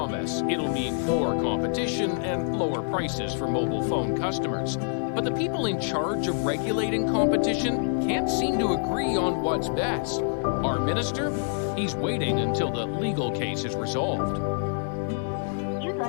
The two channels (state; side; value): silent; right; 60 dB below the other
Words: it'll mean more competition and lower prices for mobile phone customers. But the people in charge of regulating competition can't seem to agree on what's best. Our minister? He's waiting until the legal case is resolved. You'd